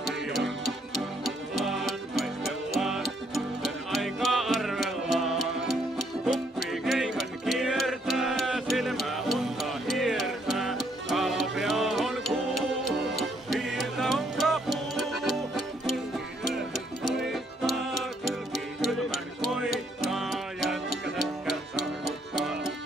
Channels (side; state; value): both; normal; correlation 0.69